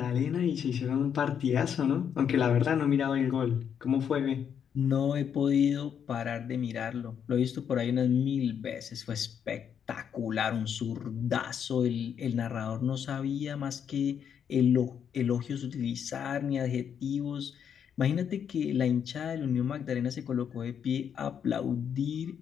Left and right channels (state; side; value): quieter; right; 8.1 dB